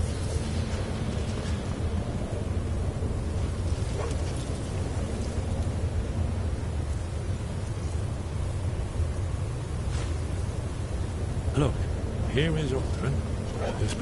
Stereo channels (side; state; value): both; identical; correlation 1.00